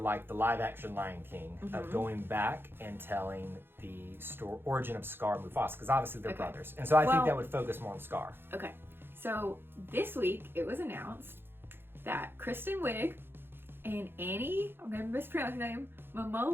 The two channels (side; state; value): left; late; 0.10 ms